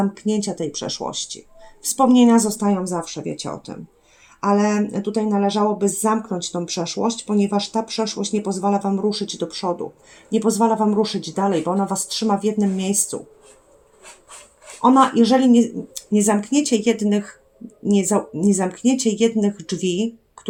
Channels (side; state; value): both; identical; correlation 1.00